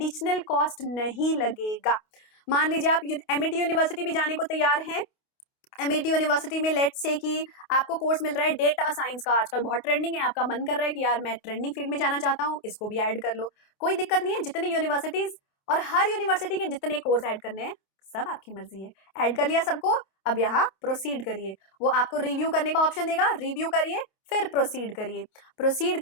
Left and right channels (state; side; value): late; right; 28 ms